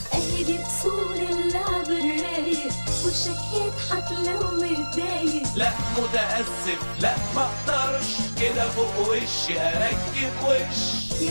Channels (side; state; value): both; inverted; correlation -1.00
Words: اهي دي اصول اللعب الرايق وشك يضحك لو متضايق. لا متأسف لا مقدرش كده فوق وشي اركب وش.